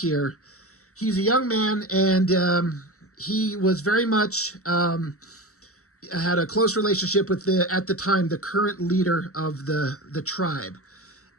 he's a young man, and he was very much had a close relationship with at the time, the current leader of the tribe.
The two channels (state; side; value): late; right; 0.65 ms